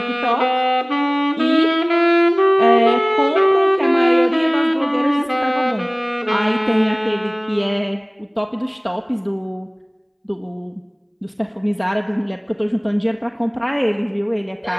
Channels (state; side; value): identical; both; correlation 1.00